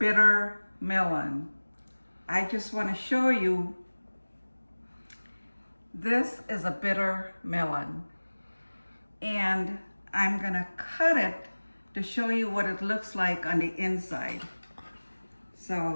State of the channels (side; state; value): both; inverted; correlation -1.00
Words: melon. I just want to show you, this is a bitter melon and I'm going to cut it to show you what it looks like on the inside.